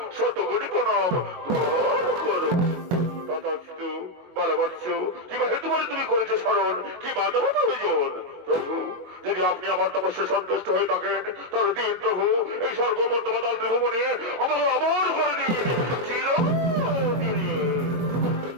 শত কোটি প্রণাম গ্রহণ করুন। তথাস্তু বলবৎস কিবা হেতু বলে তুমি করেছে শরণ, কি বাধব প্রয়োজন? প্রভু যদি আপনি আমার তপস্যায় সন্তুষ্ট হয়ে থাকেন তাহলে দিন প্রভু এই স্বর্গমর্তমাতাল ত্রিভুবনে আমাকে অমর করে দিন চিরদিনে।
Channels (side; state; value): left; late; 22 ms